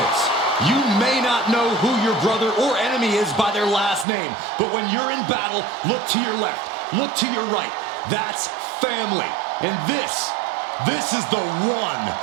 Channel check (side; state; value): left; drops out; at 4.0 s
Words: You may not know who your brother or enemy is by their last name, but when you're in battle, look to your left, look to your right. That's family. And this is the one